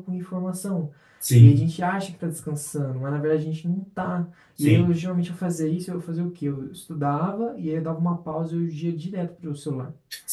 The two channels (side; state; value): both; identical; correlation 1.00